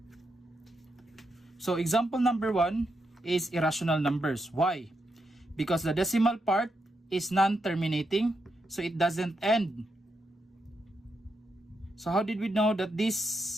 So example number 1 is irrational numbers. Why? Because the decimal part is non-terminating, so it doesn't end. So how did we know that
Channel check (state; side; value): normal; both; correlation 0.83